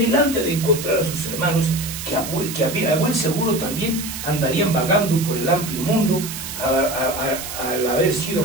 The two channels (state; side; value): noise; right; hiss, 8 dB below the sound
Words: de encontrar a sus hermanos, que a buen seguro también andarían vagando por el amplio mundo, al haber sido